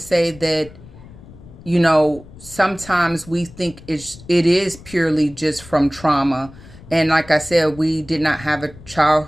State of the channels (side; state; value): left; noise; rumble, 19 dB below the sound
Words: that, sometimes we think it is purely just from trauma. And like I said, we did not have a